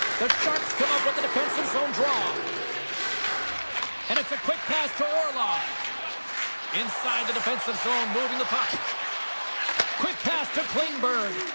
The Sharks come up with the defensive zone draw. And it's a quick pass to Orlov. Inside the defensive zone, moving the puck. Quick pass to Klingberg.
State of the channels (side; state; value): both; inverted; correlation -1.00